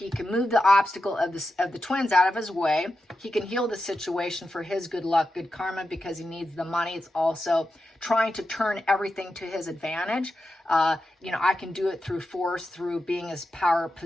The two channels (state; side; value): normal; both; correlation 0.89